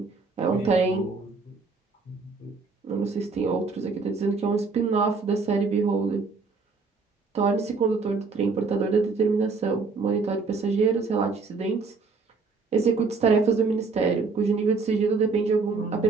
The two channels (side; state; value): left; quieter; 4.4 dB